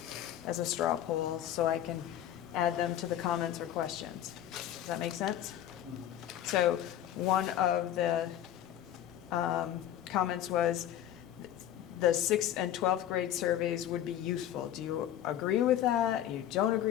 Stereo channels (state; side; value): quieter; right; 11.5 dB